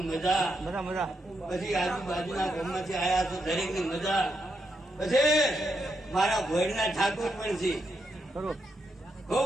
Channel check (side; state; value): both; normal; correlation 0.82